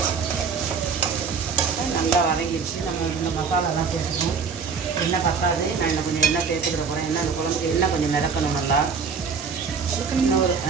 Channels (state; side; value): quieter; left; 5.6 dB